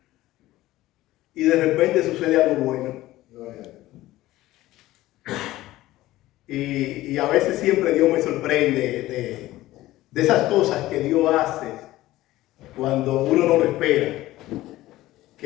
y de repente sucede algo bueno. Y a veces siempre Dios me sorprende de esas cosas que Dios hace cuando uno no lo espera,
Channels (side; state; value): right; quieter; 16.4 dB